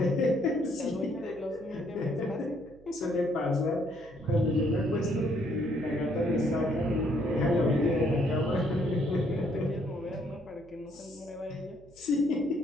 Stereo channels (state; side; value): noise; right; hum, 25 dB below the sound